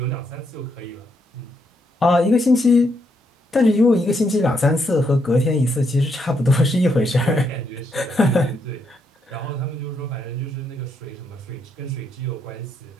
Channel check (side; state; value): both; normal; correlation 0.77